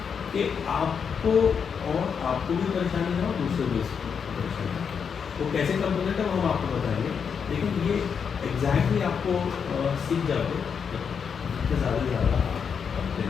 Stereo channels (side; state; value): right; quieter; 6.7 dB